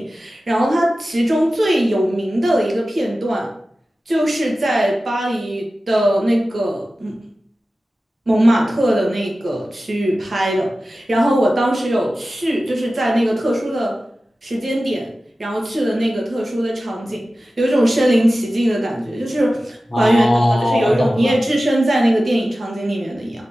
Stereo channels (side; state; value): both; normal; correlation 0.95